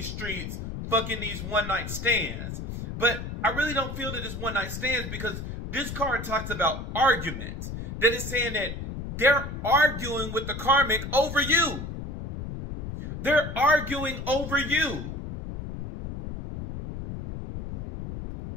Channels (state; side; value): noise; left; rumble, 7 dB below the sound